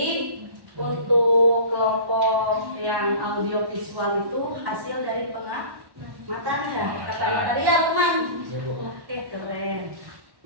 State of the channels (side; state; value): left; late; 1.1 ms